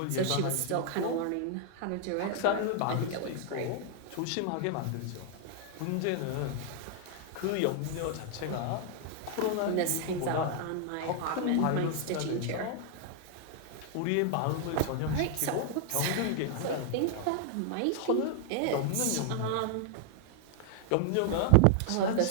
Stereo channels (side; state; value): both; different; correlation 0.00